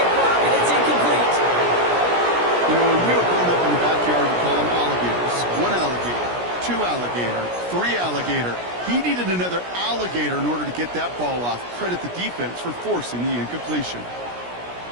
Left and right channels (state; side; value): late; left; 17 ms